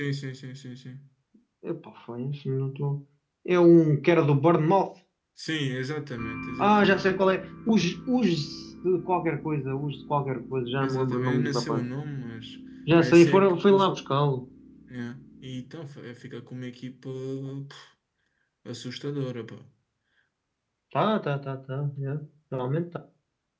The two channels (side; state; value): both; identical; correlation 1.00